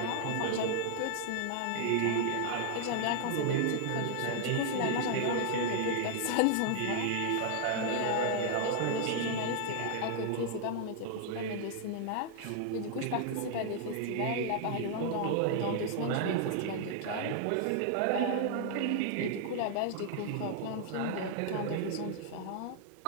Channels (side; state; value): both; different; correlation 0.00